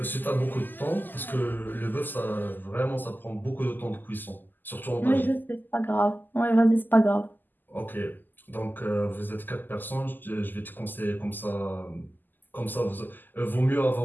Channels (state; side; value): late; right; 0.088 ms